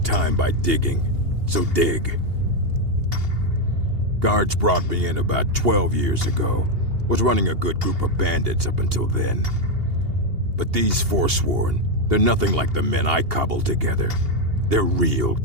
by digging, so dig. Guards brought me in about 12 years ago. Was running a good group of bandits up until then. But these Forsworn, they're nothing like the men I cobbled together. They're real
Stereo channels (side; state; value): left; late; 2.8 ms